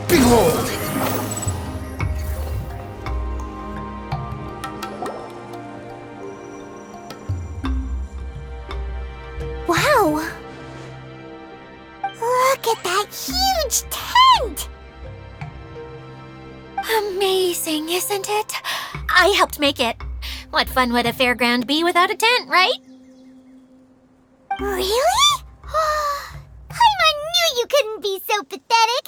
Behold! Wow! huge tent! Amazing, isn't it? I helped make it. What fun would a fairground be without a tent, right? Really? Paimon knew you couldn't be so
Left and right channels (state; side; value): identical; both; correlation 1.00